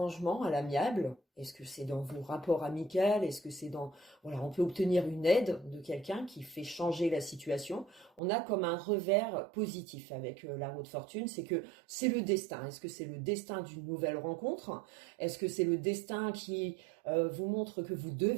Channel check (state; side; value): drops out; left; at 8.2 s